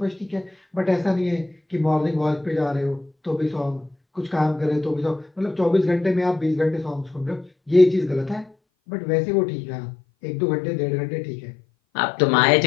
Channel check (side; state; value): right; drops out; at 8.5 s